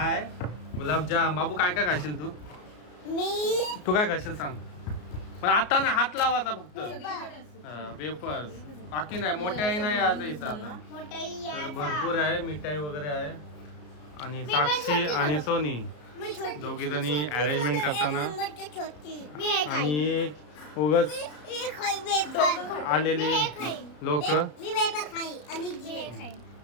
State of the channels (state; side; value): late; right; 33 ms